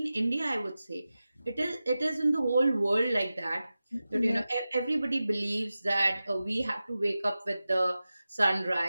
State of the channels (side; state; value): both; inverted; correlation -0.95